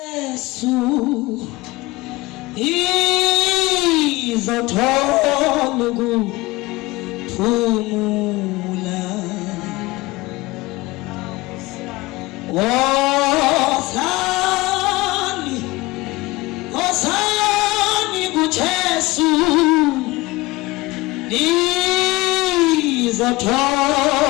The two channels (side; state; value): right; quieter; 21.2 dB